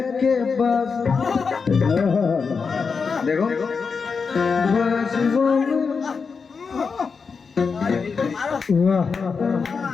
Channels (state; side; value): quieter; right; 5.3 dB